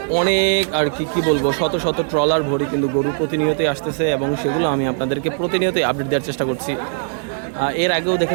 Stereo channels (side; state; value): left; silent; digital silence